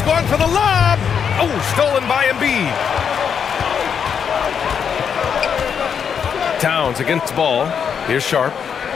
going for the lob. Oh, stolen by Embiid. Towns against the ball. Here's Sharp.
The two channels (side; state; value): right; quieter; 7.3 dB